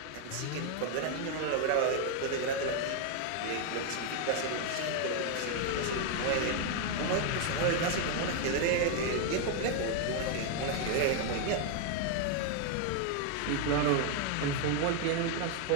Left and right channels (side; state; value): both; different; correlation 0.01